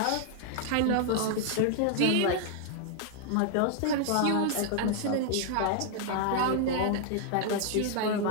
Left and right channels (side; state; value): both; different; correlation 0.00